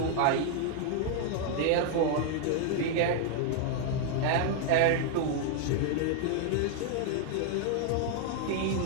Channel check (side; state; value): both; different; correlation 0.00